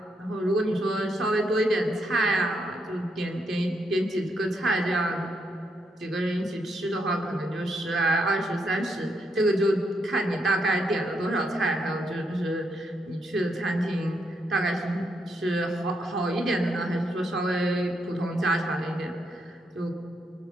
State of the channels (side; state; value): both; normal; correlation 0.78